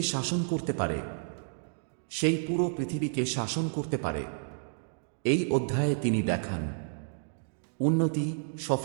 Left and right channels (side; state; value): left; silent; digital silence